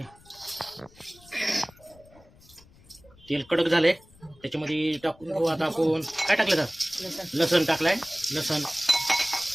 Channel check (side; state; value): left; noise; rumble, 26 dB below the sound